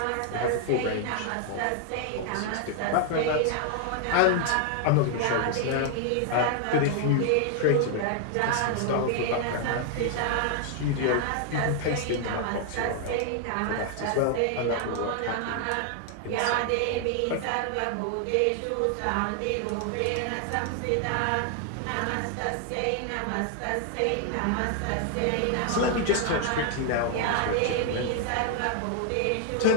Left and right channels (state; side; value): different; both; correlation 0.00